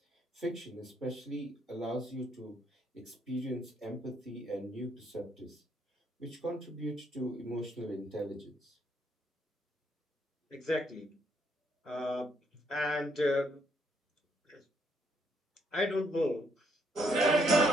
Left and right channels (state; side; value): normal; both; correlation 0.72